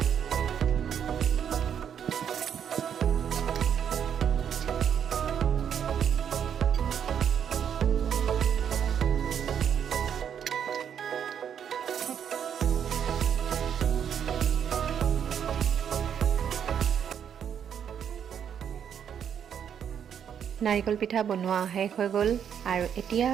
নাৰিকল পিঠা বনোৱা শেষ হৈ গ'ল। আৰু এতিয়া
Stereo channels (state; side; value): quieter; left; 8.4 dB